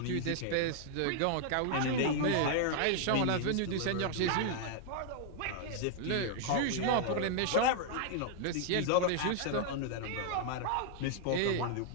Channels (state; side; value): different; both; correlation 0.00